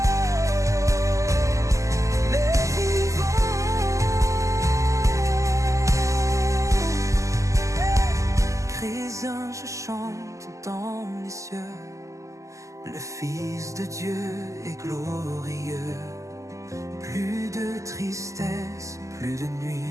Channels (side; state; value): left; late; 0.16 ms